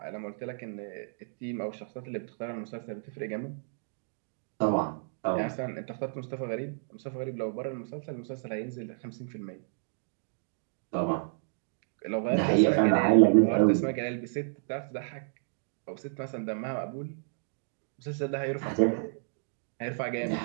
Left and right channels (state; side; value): silent; left; digital silence